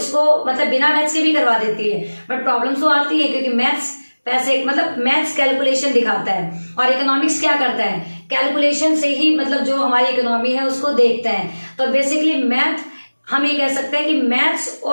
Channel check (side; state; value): both; inverted; correlation -1.00